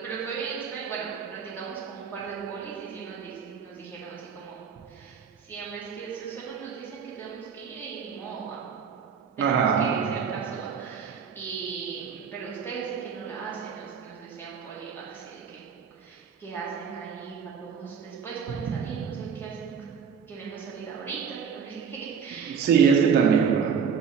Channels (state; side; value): quieter; left; 6.6 dB